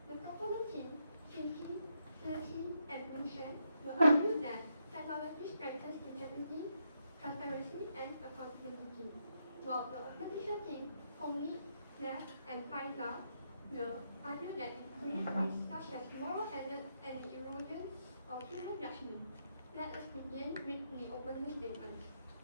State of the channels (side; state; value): both; inverted; correlation -0.79